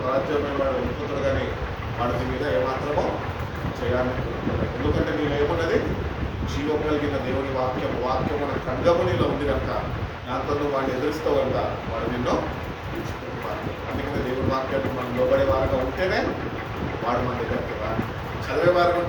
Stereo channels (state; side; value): identical; both; correlation 1.00